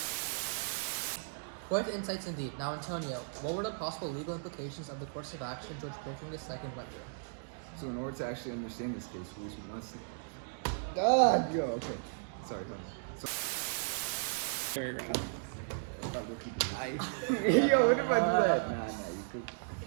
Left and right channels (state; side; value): silent; left; digital silence